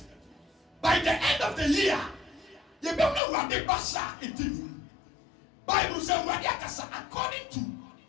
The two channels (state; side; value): drops out; right; at 3.2 s